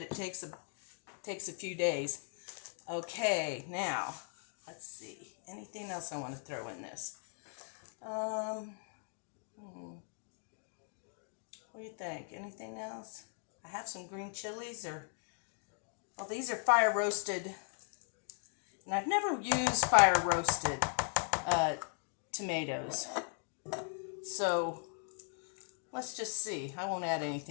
it takes a few days. Okay, now let's see. Anything else I want to throw in this? What do you think? Anything else? I have some green chilies, well, these are fire roasted. And I've never used fire roasted tomatoes. So let's just see. I won't add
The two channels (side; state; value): right; silent; 52 dB below the other